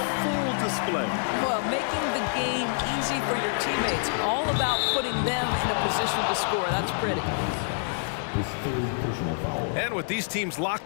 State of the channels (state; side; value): silent; right; digital silence